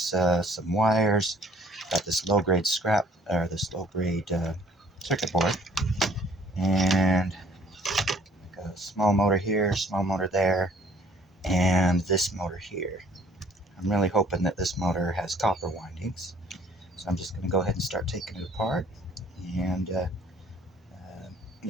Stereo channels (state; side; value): normal; both; correlation 0.57